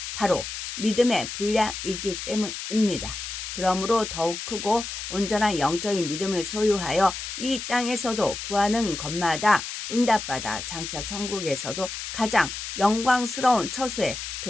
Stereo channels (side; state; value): left; noise; hiss, 7 dB below the sound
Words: 바로 믿음의 분량이기 때문입니다. 그러므로 더욱 크고 온전한 영적인 믿음을 소유하여 이 땅에서도 구하는 것마다 응답받아 장차 천국에서도 가장 영광스러운 처소에